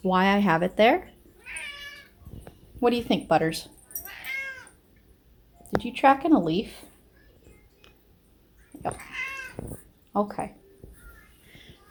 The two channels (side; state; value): both; identical; correlation 1.00